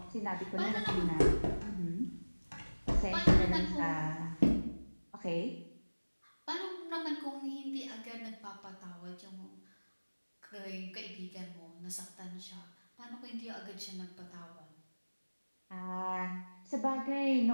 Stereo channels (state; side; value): inverted; both; correlation -1.00